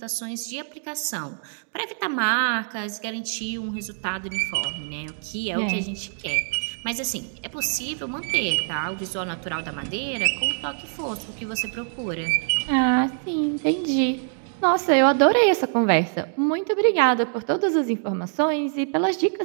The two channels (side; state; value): left; silent; digital silence